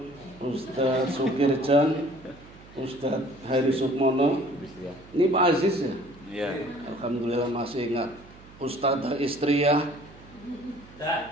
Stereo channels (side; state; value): right; noise; hum, 22 dB below the sound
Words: Ustadz Sukirjan, Ustadz Hari Sukmono. Ini Pak Aziz ya? Iya. Alhamdulillah masih ingat. Ustadzah Istriyah,